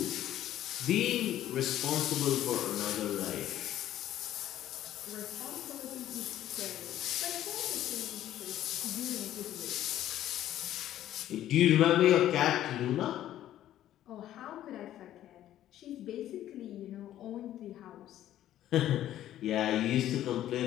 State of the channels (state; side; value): quieter; right; 12.6 dB